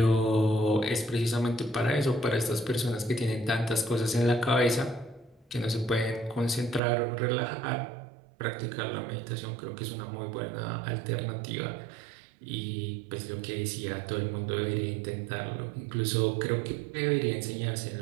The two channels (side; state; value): left; drops out; at 6.8 s